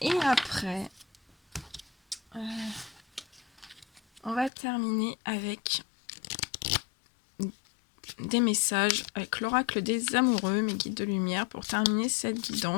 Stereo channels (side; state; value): right; drops out; at 4.5 s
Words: Et après, on va terminer avec des messages avec l'oracle des amoureux, mes guides de lumière, pour terminer cette